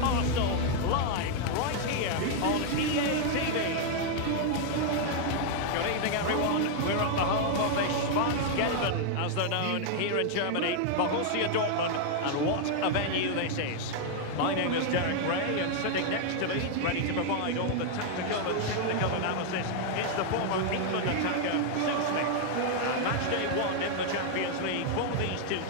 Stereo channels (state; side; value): different; both; correlation 0.00